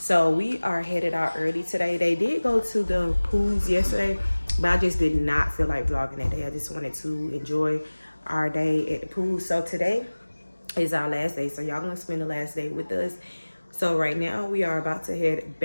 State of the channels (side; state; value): both; inverted; correlation -1.00